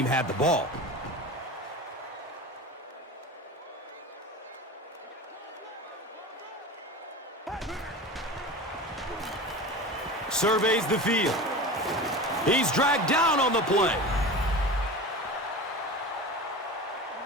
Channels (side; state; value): both; normal; correlation 0.31